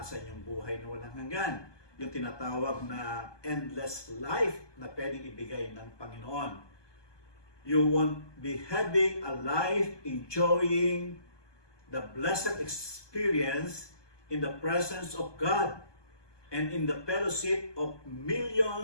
yung buhay na walang hanggan. Yung tinatawag na endless life na pwedeng ibigay ng Panginoon. You won't be having a life enjoying the blessed experience in the presence of God and in the fellowship of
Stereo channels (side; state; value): right; late; 1.2 ms